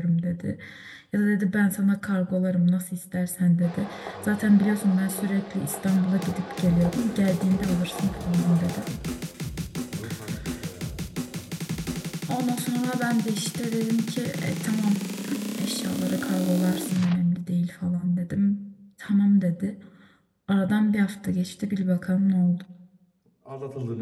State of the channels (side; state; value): both; identical; correlation 1.00